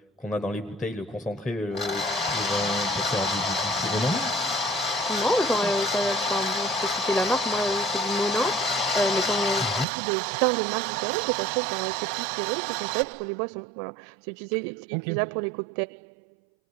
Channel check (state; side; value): drops out; left; at 9.9 s